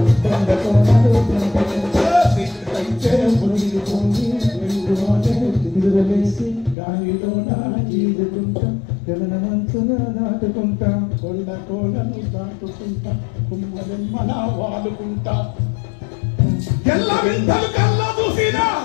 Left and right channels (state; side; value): drops out; right; at 6.8 s